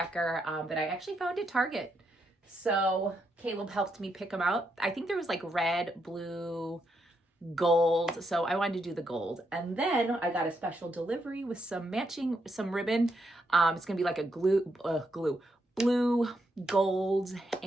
that I actually found at Target. So Caleb helped me pick them out. I think there was like red, blue, gold. So I wanted to do the gold. And then I got a special delivery with some ribbon. It's gonna be like a blue, gold,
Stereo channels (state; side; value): normal; both; correlation 0.80